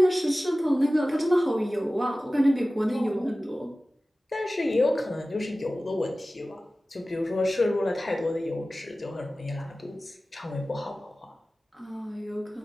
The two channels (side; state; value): both; normal; correlation 0.96